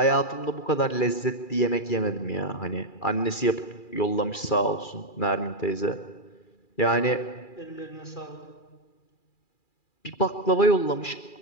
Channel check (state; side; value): late; right; 2.4 ms